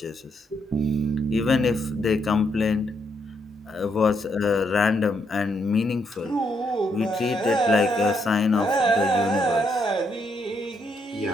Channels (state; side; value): normal; both; correlation 0.76